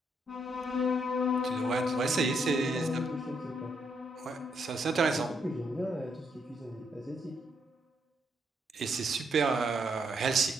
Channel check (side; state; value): both; normal; correlation 0.76